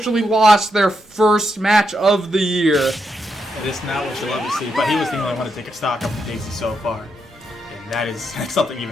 lost their first match of the year. It is not what you love to see, but he was the only one to take a stock of Daisy so far, and that's something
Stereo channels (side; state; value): both; normal; correlation 0.82